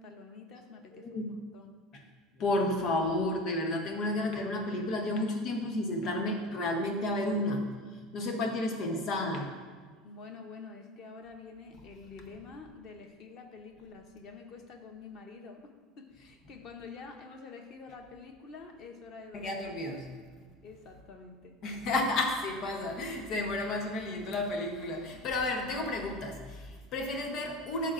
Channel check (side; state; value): both; normal; correlation 0.32